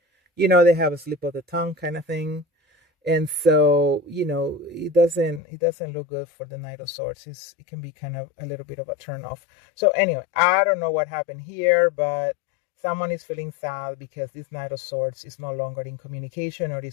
They have a slip of the tongue kind of thing. And so, it doesn't look good for the Knight of Swords. It can be kind of a little bit of a turn off. So anyway, I don't know what happened here, but someone is feeling sad because this Knight of Swords is no longer in communication, or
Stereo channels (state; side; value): drops out; right; at 5.4 s